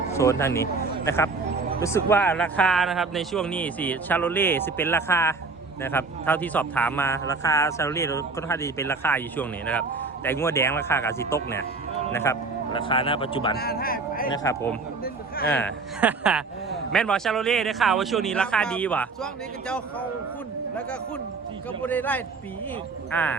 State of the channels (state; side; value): quieter; left; 4.1 dB